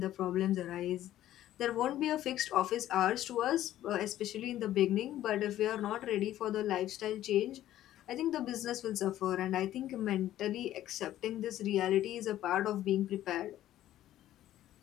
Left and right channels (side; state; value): right; quieter; 13.1 dB